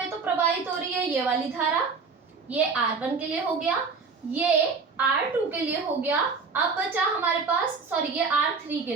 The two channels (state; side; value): quieter; left; 4.9 dB